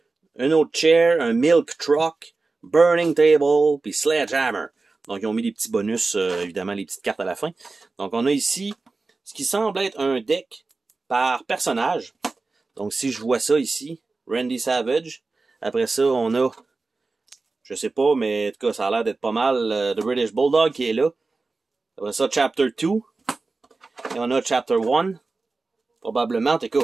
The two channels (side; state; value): left; quieter; 3.8 dB